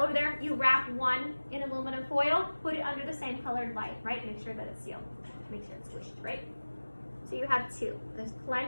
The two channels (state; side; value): inverted; both; correlation -1.00